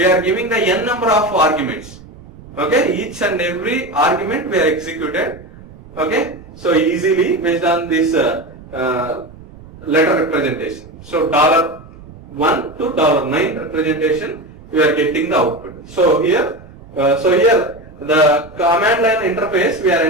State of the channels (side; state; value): right; noise; rumble, 20 dB below the sound